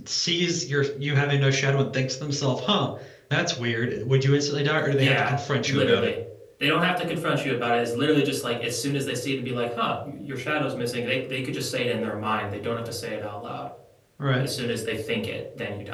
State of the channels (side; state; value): both; identical; correlation 1.00